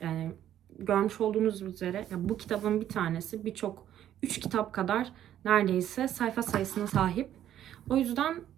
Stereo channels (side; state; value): left; quieter; 11.3 dB